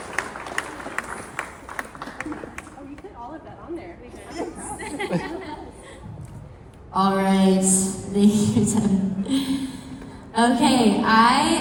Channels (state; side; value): identical; both; correlation 1.00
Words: Oh, you put all of that on there. All right, thank you, Tim. Okay,